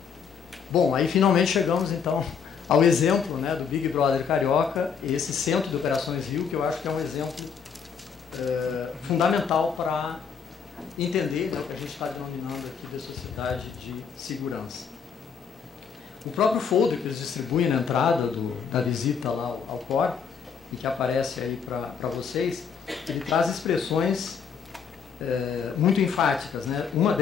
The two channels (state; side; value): quieter; right; 6.6 dB